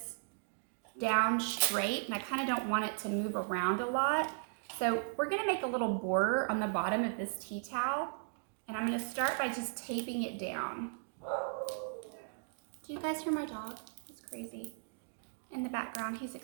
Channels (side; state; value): left; silent; digital silence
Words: down straight, and I kind of don't want it to move around a lot. So we're going to make a little border on the bottom of this tea towel, and I'm going to start by just taping it down. Do you guys hear my dog? He's crazy. In the background, he's